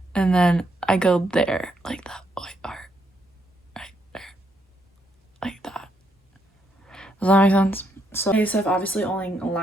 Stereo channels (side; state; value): both; normal; correlation 0.76